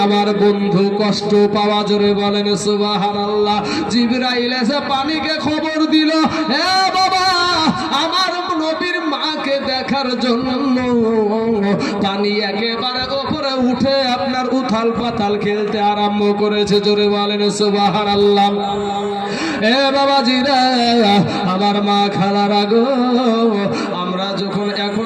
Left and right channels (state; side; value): identical; both; correlation 1.00